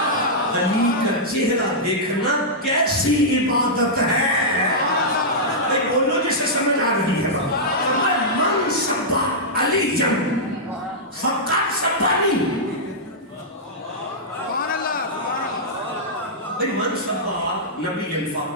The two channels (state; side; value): normal; both; correlation -0.10